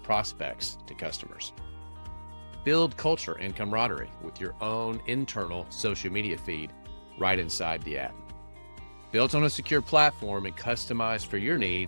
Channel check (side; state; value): both; inverted; correlation -1.00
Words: prospects to customers. Build culture and camaraderie with your own internal social media feed right inside the app. Built on a secure platform and customized for your